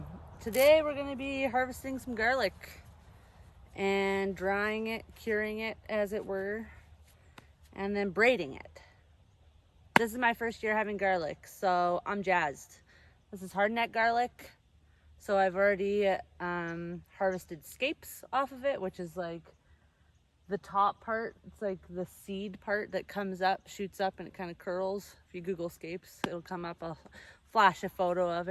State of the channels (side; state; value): both; identical; correlation 1.00